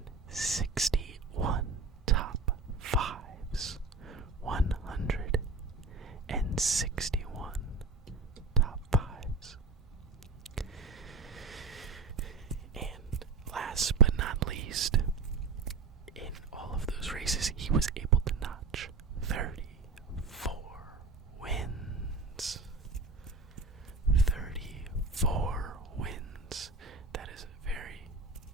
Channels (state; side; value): quieter; left; 4.1 dB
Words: top fives. 161 top fives. And last but not least, in all of those races, he was able to notch 34 wins. 34 wins. That is a very